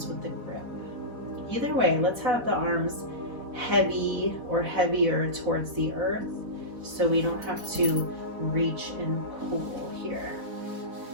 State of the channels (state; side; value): late; left; 4.1 ms